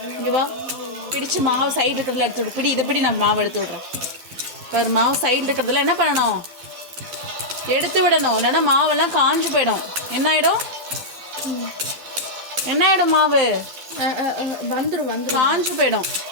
இங்கே வா, பிடிச்சு மாவு சைடு இருக்கிறதுல எடுத்து விடு. பிடி, இதை பிடி, நான் மாவு எடுத்து விட்றேன். பாரு, மாவு சைடில் இருக்கிறதுல என்ன பண்ணணும், எடுத்து விடணும். இல்லைன்னா மாவெல்லாம் காஞ்சு போயிடும். என்ன ஆகிடும், என்ன ஆகிடும், மாவு வந்துடும், காஞ்சு போயிடும்.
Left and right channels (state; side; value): late; left; 12 ms